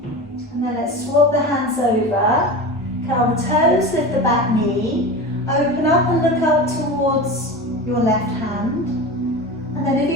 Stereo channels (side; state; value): both; normal; correlation 0.28